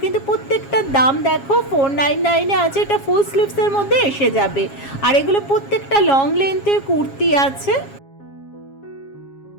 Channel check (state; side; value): late; right; 7.3 ms